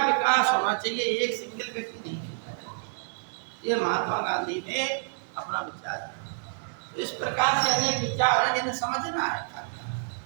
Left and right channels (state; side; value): silent; left; digital silence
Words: विकास होना चाहिए, एक सिंगल व्यक्ति नहीं। ये महात्मा गांधी ने अपना विचार दिया। तो इस प्रकार से अनेक विचार हैं जिन्हें समझना है,